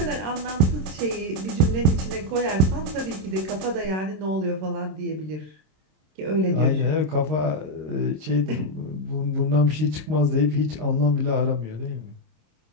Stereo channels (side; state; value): left; late; 26 ms